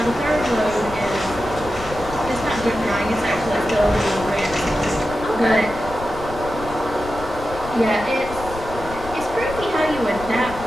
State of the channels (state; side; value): noise; left; rumble, 12 dB below the sound